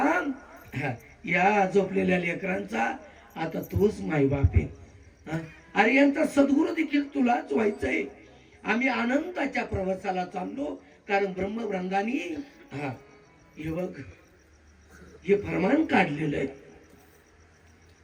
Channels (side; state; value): both; identical; correlation 1.00